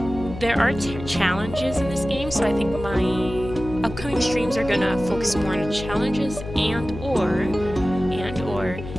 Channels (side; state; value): left; noise; hum, 10 dB below the sound